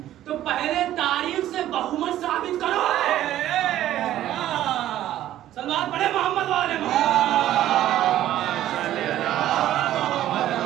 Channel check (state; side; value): quieter; left; 13.0 dB